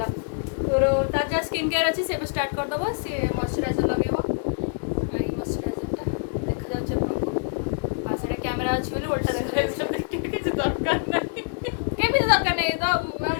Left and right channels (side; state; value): right; silent; digital silence